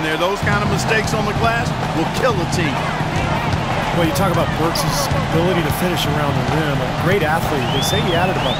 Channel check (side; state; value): both; identical; correlation 1.00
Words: there. Those kind of mistakes on the glass will kill a team. Well, you talk about Burks' ability to finish around the rim. A great athlete. They say he added about